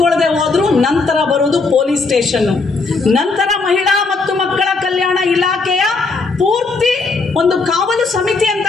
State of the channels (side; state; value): right; quieter; 4.0 dB